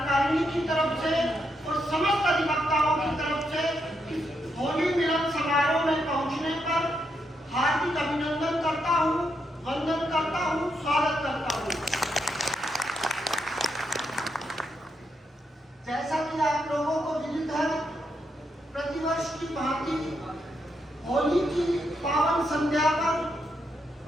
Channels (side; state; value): both; normal; correlation 0.80